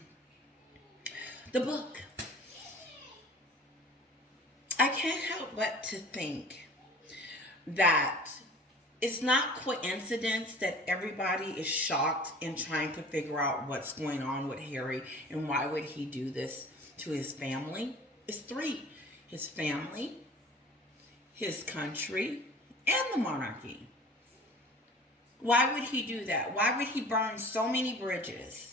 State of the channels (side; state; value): both; normal; correlation 0.44